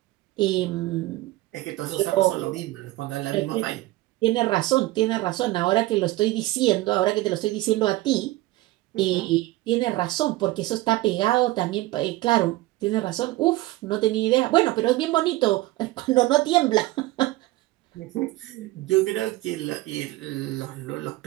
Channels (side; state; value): left; quieter; 18.4 dB